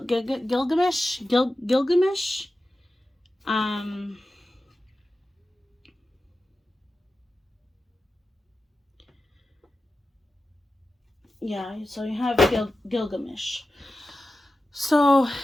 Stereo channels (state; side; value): normal; both; correlation 0.93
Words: Yeah, so you have Gilgamesh. So